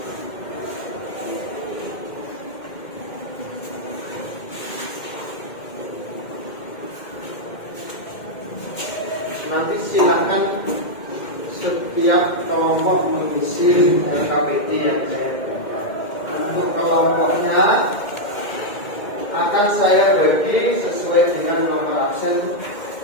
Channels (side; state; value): right; late; 2.1 ms